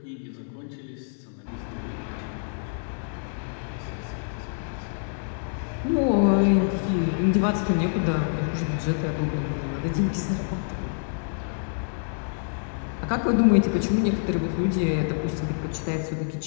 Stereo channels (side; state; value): right; silent; digital silence